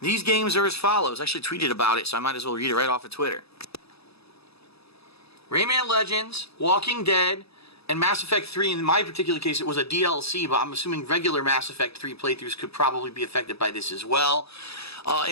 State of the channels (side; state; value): right; late; 0.78 ms